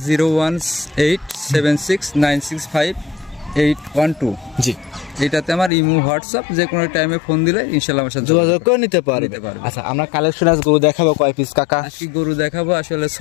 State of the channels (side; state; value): right; drops out; at 5.7 s